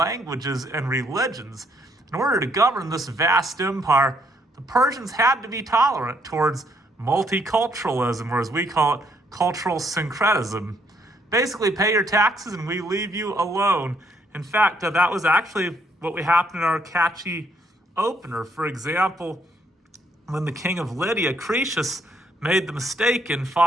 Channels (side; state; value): both; normal; correlation 0.70